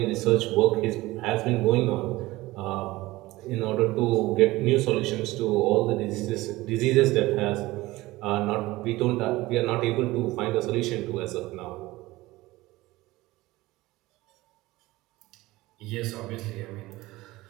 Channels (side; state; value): left; quieter; 19.1 dB